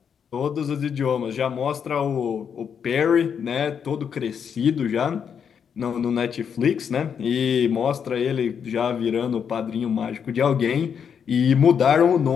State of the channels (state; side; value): quieter; right; 7.4 dB